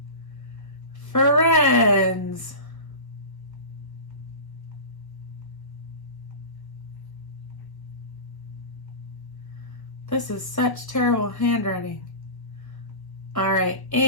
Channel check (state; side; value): late; right; 1.0 ms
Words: friends. This is such terrible handwriting. All right,